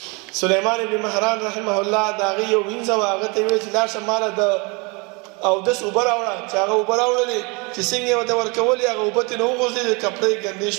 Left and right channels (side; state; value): left; quieter; 29.7 dB